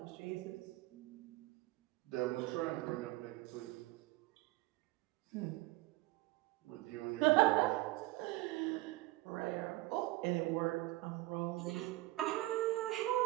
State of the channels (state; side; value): quieter; left; 18.9 dB